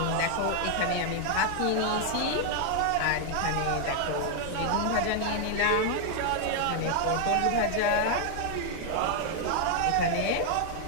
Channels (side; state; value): both; different; correlation 0.00